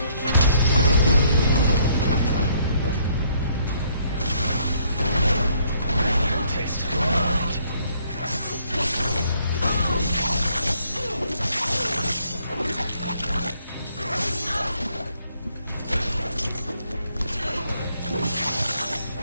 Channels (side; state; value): both; inverted; correlation -0.67